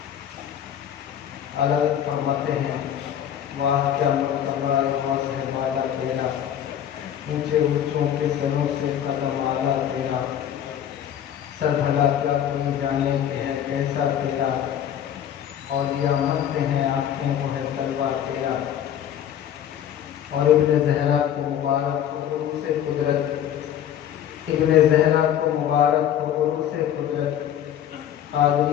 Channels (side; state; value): right; quieter; 10.1 dB